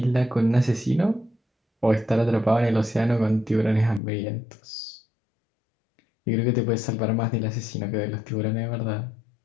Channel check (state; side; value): drops out; right; at 4.0 s